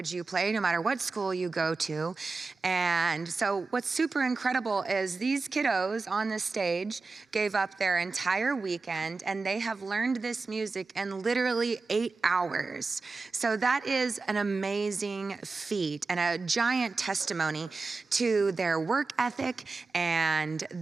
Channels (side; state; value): left; quieter; 4.0 dB